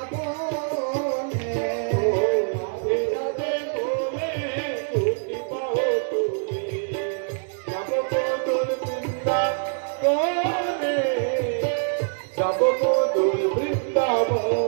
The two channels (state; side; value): silent; left; 62 dB below the other